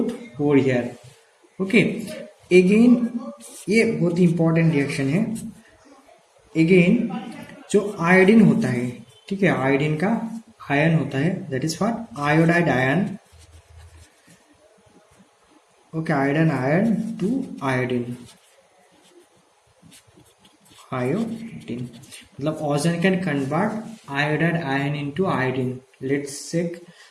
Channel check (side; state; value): both; identical; correlation 1.00